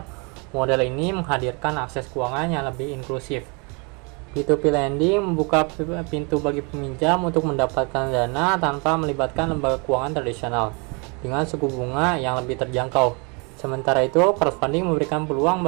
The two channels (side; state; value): left; quieter; 32.2 dB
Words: model ini menghadirkan akses keuangan yang lebih inklusif. P2P lending membuka pintu bagi peminjam untuk mendapatkan dana tanpa melibatkan lembaga keuangan tradisional, dengan suku bunga yang lebih terjangkau. Sementara itu, crowdfunding memberikan peluang